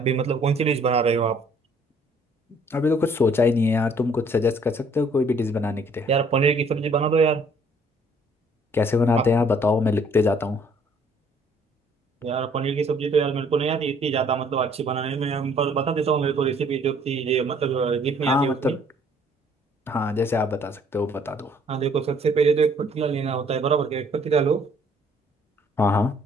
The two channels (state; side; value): normal; both; correlation 0.61